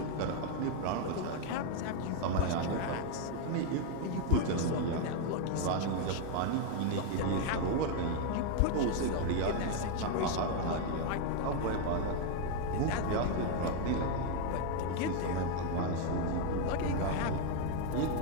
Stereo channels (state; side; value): different; both; correlation 0.01